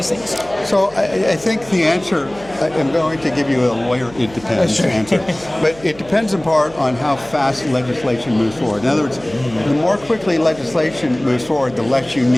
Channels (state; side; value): noise; right; hum, 21 dB below the sound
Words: things. So I think the answer, I'm going to give you a lawyer it depends answer, but it depends in part on how fast legislation moves forward. In other words, the more quickly legislation moves forward, the less you